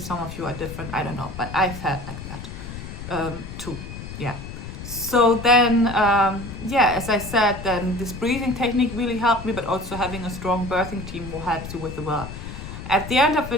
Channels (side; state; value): left; noise; rumble, 10 dB below the sound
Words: of you are different, I don't know, but I felt like that too. Yeah. So then, yeah, as I said, then this breathing technique really helped me, but also having a strong birthing team will help you with the work. At the end of the